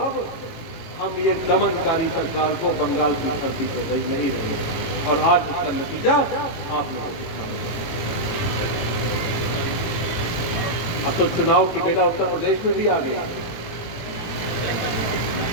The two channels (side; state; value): right; late; 18 ms